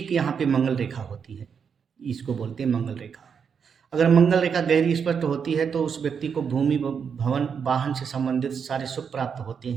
यहाँ पे मंगल रेखा होती है, इसको बोलते हैं मंगल रेखा। अगर मंगल रेखा गहरी स्पष्ट होती है तो उस व्यक्ति को भूमि भवन वाहन से संबंधित सारे सुख प्राप्त होते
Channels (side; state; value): left; quieter; 6.7 dB